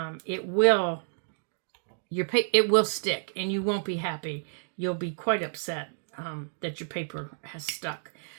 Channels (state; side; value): silent; left; digital silence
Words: it will stick and you won't be happy. You'll be quite upset that your paper has stuck.